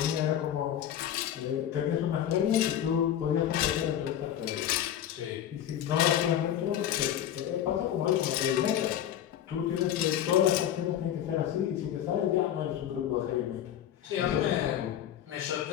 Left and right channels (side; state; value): right; quieter; 10.8 dB